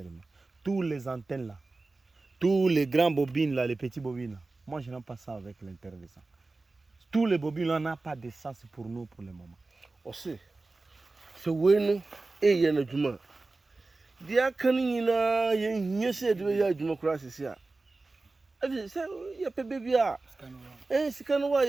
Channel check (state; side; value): quieter; left; 3.4 dB